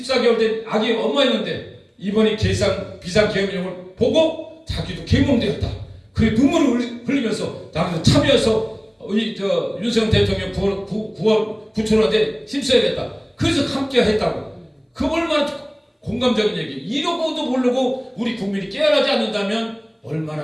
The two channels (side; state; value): both; identical; correlation 1.00